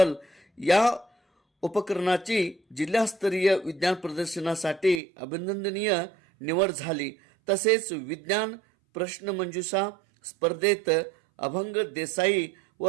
या उपकरणाची जिल्हास्तरीय विज्ञान प्रदर्शनासाठी अभिनंदनीय निवड झाली। तसेच विज्ञान प्रश्नमंजुषा स्पर्धेत अभंग देसाई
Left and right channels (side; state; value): left; drops out; at 5.0 s